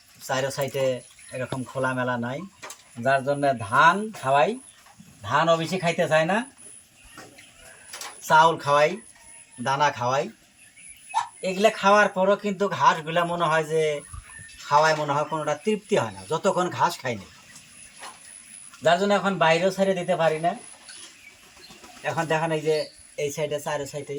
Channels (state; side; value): identical; both; correlation 1.00